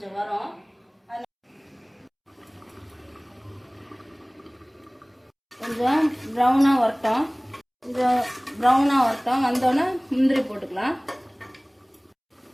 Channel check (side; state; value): both; identical; correlation 1.00